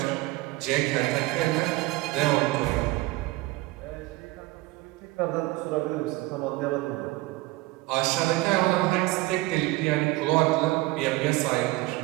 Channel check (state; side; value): quieter; left; 20.2 dB